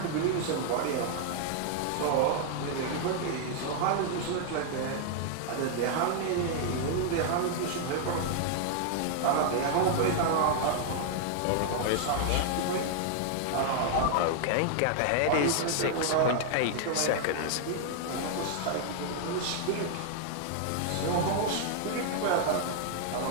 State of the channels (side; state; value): both; different; correlation 0.00